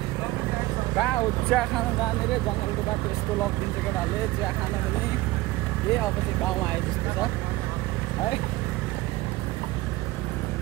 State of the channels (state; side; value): quieter; left; 18.9 dB